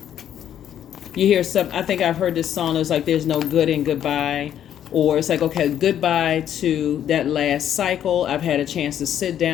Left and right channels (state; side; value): quieter; right; 10.2 dB